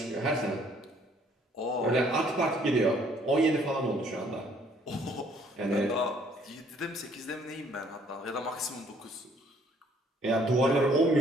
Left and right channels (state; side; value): normal; both; correlation 0.62